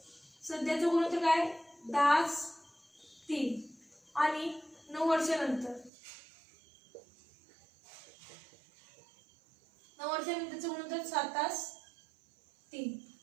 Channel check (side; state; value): left; drops out; at 5.9 s